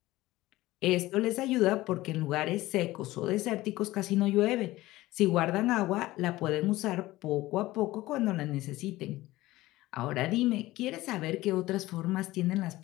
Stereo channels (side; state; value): right; quieter; 17.7 dB